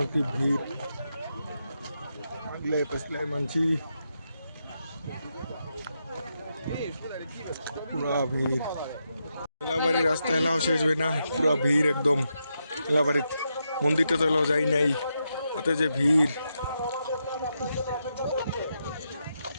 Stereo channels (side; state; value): both; inverted; correlation -0.84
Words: কি ভিড়, আগলে পেছলে মানছি পুরা ভিড়। মেলাবাড়ির রাস্তা এলাও শেষ হয় না, পুরা ভিড় একদম। মেলাবাড়ির মন্দিরটা তো এলাও যাই নাই, তাতে যে ভিড়।